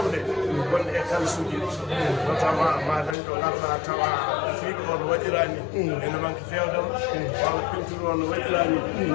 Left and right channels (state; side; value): drops out; right; at 3.2 s